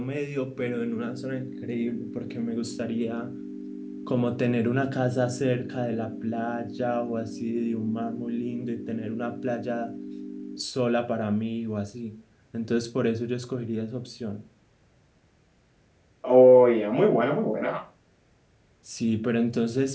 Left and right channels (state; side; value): identical; both; correlation 1.00